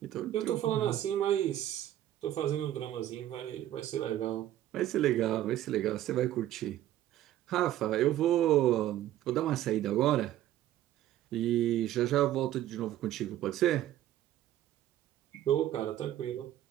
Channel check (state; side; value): quieter; left; 12.9 dB